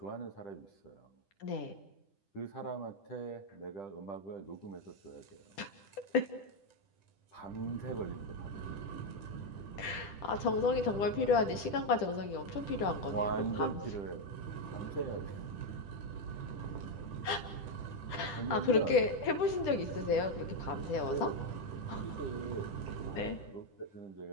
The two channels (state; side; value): late; right; 10 ms